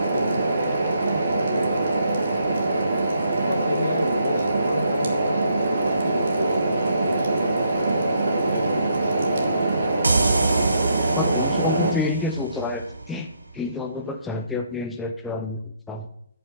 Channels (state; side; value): inverted; both; correlation -0.73